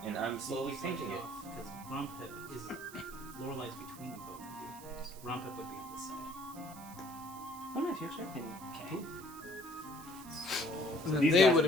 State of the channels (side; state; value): right; noise; hiss, 17 dB below the sound